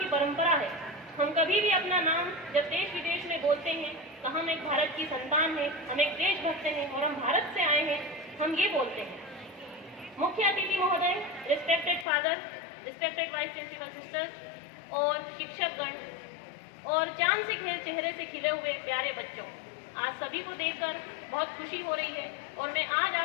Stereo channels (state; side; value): drops out; right; at 12.1 s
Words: परंपरा है। हम कभी भी अपना नाम जब देश विदेश में बोलते हैं तो हम एक भारत की संतान हैं, हम एक देशभक्त हैं और हम भारत से आए हैं, हम ये बोलते हैं। मुख्य अतिथि महोदय, respected father, respected vice principal sisters और शिक्षकगण और चांद से चेहरे से खिले हुए प्यारे बच्चों, आज सभी को देखकर बहुत खुशी हो रही है और मैं आज